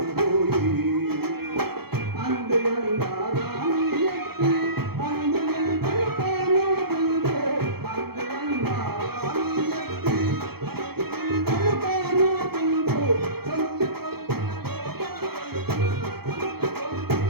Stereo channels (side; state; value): left; late; 0.96 ms